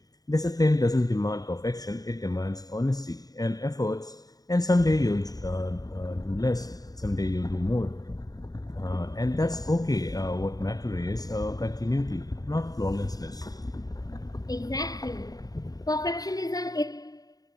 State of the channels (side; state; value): right; late; 0.18 ms